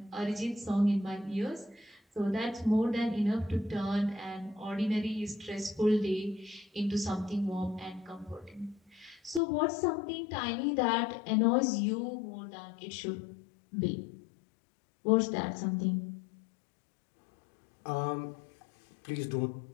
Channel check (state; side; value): drops out; right; at 9.4 s